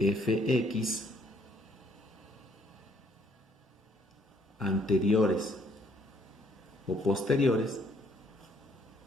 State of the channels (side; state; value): both; normal; correlation 0.65